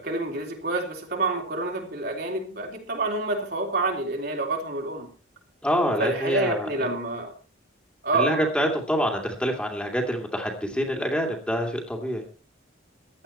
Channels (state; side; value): normal; both; correlation 0.31